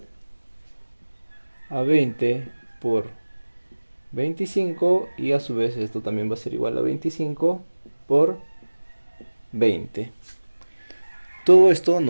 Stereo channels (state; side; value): inverted; both; correlation -1.00